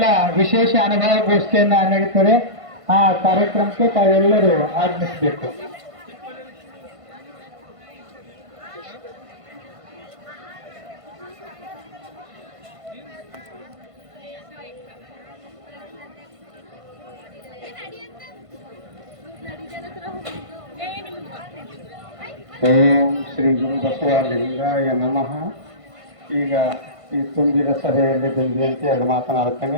ವಿಶೇಷ ಅನುಭವ ಗೋಷ್ಠಿಯನ್ನ ನಡೀತದೆ. ಆ ಕಾರ್ಯಕ್ರಮಕ್ಕೆ ತಾವೆಲ್ಲರೂ ಆಗಮಿಸಬೇಕು. ಓಂ ಶ್ರೀ ಗುರು ಬಸವಲಿಂಗಾಯ ನಮಃ. ಈಗ ಈ ತುಂಬಿದ ಸಭೆಯಲ್ಲಿ ಬಂದಿಯಂತೆ ಅದು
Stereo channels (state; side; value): late; left; 1.5 ms